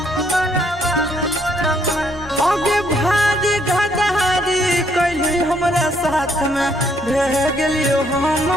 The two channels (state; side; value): normal; both; correlation 0.69